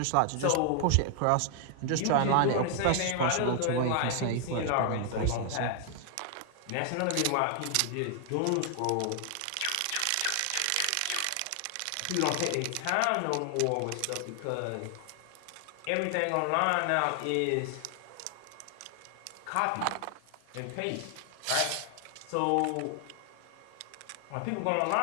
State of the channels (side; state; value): both; different; correlation 0.00